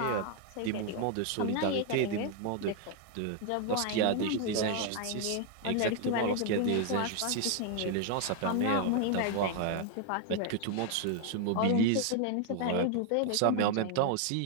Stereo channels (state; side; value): different; both; correlation 0.00